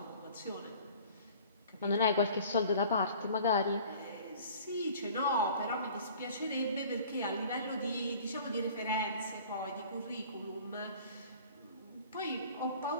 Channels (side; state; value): both; inverted; correlation -0.48